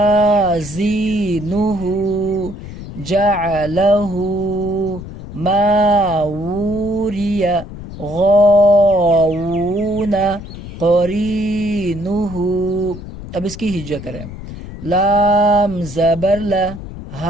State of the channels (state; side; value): noise; left; rumble, 12 dB below the sound